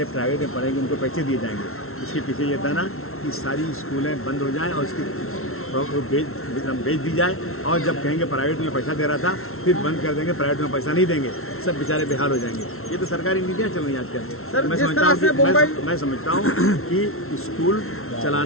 प्राइवेट में पढ़ेंगे उनको पैसे दिए जाएंगे। इसके पीछे ये था ना कि सारी स्कूलें बंद हो जाएं और उसकी वो बेच दी जाए, और जब कहेंगे प्राइवेट में पैसा दे रहा था फिर बंद कर देंगे, प्राइवेट में पैसा नहीं देंगे, सब बेचारे बेहाल हो जाएंगे। ये तो सरकारी नीतियाँ चल रही हैं आजकल। सर, मैं जिस समझता तरह हूँ से कि मैं समझता हूँ कि स्कूल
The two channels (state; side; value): late; right; 0.62 ms